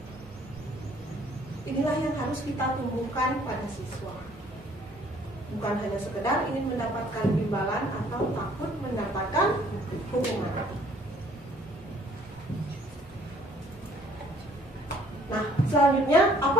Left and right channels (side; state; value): both; normal; correlation 0.60